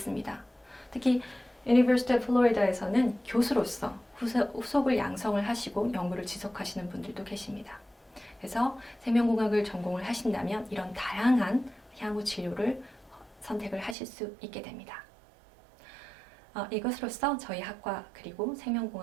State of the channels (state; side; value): drops out; left; at 14.0 s